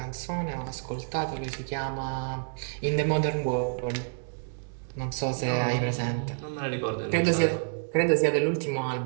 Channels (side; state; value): left; silent; 59 dB below the other